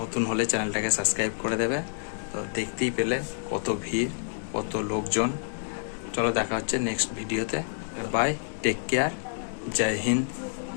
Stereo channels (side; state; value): right; silent; digital silence